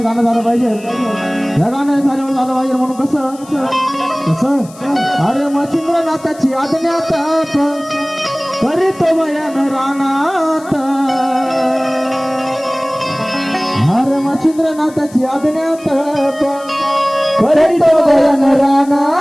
गाणं झालं पाहिजे. या गाणं झाल्यावर झालं पाहिजे म्हणून कसं कसं अरे मच्छिंद्रनाथाची आज्ञात करीतो बयान रानात. अरे मच्छिंद्रनाथाची आज्ञात करीतो बयान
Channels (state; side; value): noise; left; hiss, 22 dB below the sound